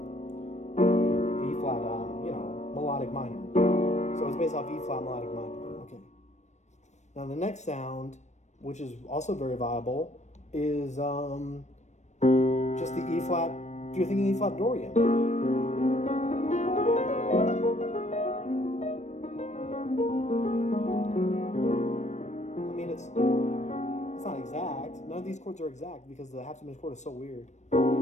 melodic minor. So it's based off E flat melodic minor. Okay. Now the next sound, which is also very viable, is just the E flat. You're thinking E flat Dorian. It's not exact. None of these chords are exact because the half diminished chord is so weird.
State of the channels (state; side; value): late; right; 0.34 ms